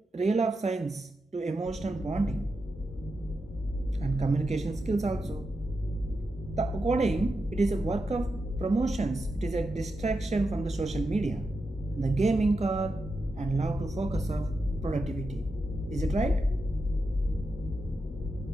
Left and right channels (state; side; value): normal; both; correlation 0.88